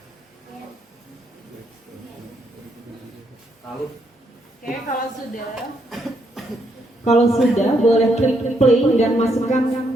Oke, kalau sudah boleh klik play dan masukkan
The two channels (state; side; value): normal; both; correlation 0.76